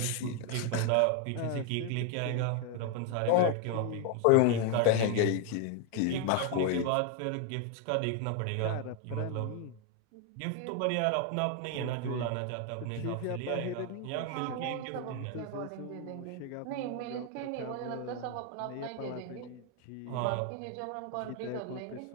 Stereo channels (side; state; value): both; different; correlation 0.01